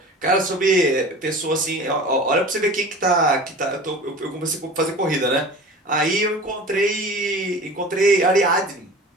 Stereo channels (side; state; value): both; normal; correlation 0.38